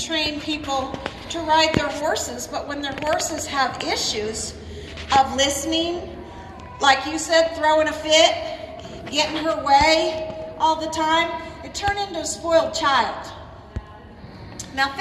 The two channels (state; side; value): identical; both; correlation 1.00